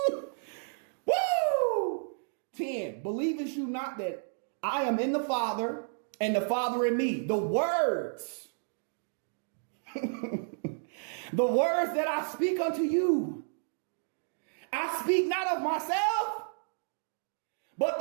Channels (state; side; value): silent; left; digital silence